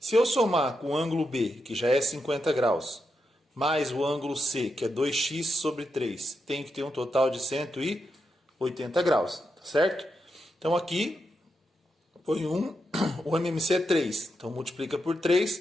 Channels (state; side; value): normal; both; correlation 0.85